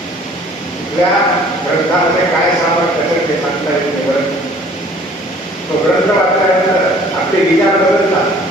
या ग्रंथामध्ये काय सामर्थ्य ते सांगता येते. बरं, तो ग्रंथ वाचल्यानंतर आपले विचार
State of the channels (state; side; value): normal; both; correlation 0.53